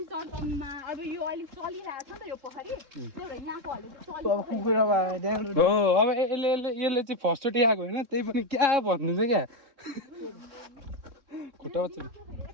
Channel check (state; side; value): late; left; 3.6 ms